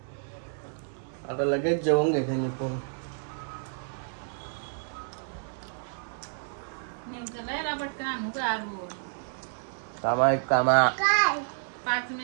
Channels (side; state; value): left; silent; 58 dB below the other